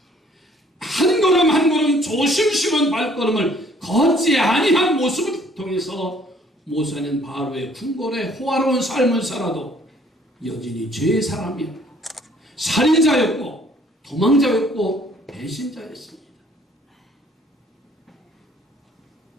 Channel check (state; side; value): normal; both; correlation 0.60